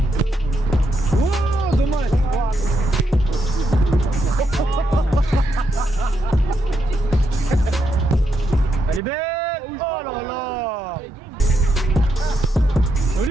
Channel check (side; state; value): both; normal; correlation 0.81